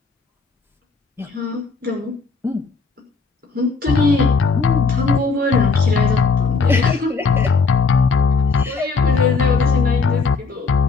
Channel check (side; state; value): right; quieter; 4.6 dB